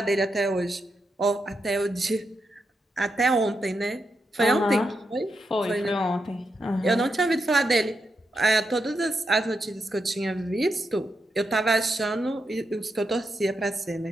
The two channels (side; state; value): both; normal; correlation 0.84